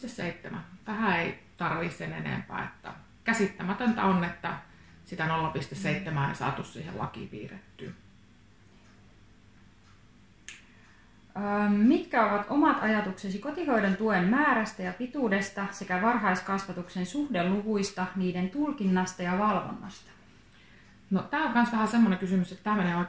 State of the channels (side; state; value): both; identical; correlation 1.00